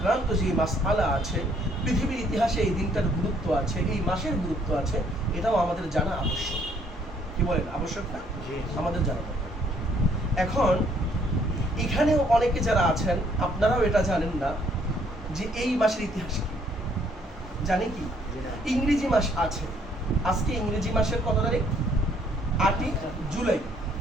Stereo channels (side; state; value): both; normal; correlation 0.65